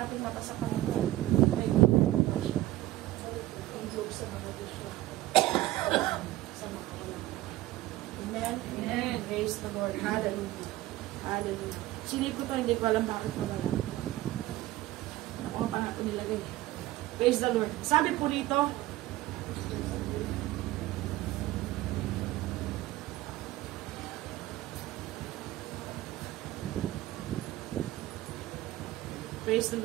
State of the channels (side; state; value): left; quieter; 16.5 dB